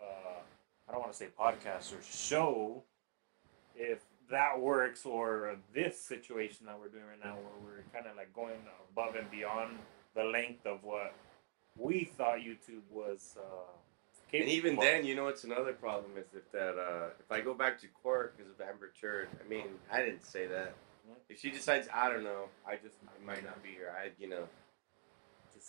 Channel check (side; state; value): left; silent; digital silence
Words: don't want to say podcast or show. If that works, or this situation that we're doing right now, where we're kind of like going above and beyond the length of what we thought YouTube was. And even then, you know what's another problem is that if I go back to court because of Amber Turd, I mean, I didn't say that. If she decides, I don't know, I might not be here.